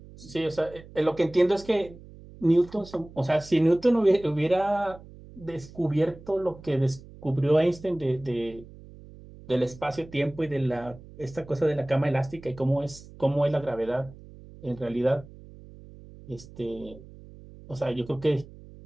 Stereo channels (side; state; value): right; noise; hum, 19 dB below the sound